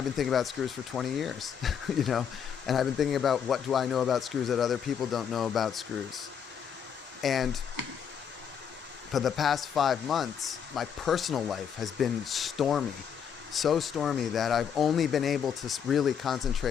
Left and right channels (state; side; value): quieter; right; 7.8 dB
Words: been thinking about screws for 20 years, you know, and I've been thinking about what do I know about screws that other people don't know about screws. And for the past 5 months, my personal life has been stormy, so stormy that I've only been able to really